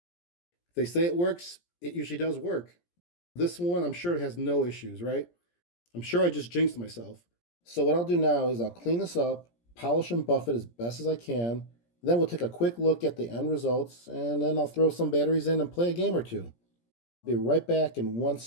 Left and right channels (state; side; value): late; right; 17 ms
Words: If they say it works, it usually does work. This one, I'm sure it has no issues, right? I'm sure I just jinxed myself. So what I'll do now is I'll clean this up, polish and buff it as best as I can. Then we'll take a quick look at the end results, and then I'll throw some batteries in and play a game or two. I'll be right back in 1